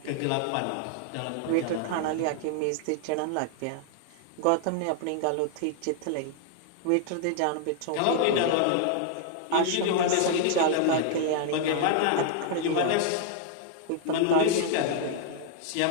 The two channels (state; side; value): different; both; correlation 0.00